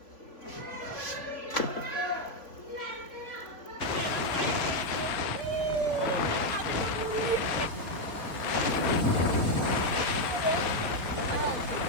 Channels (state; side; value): late; right; 3.8 ms